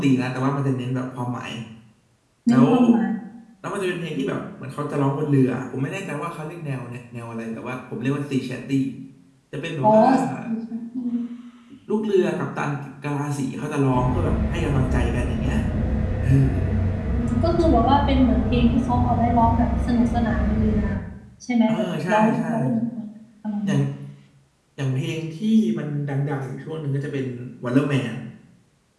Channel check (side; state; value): both; identical; correlation 1.00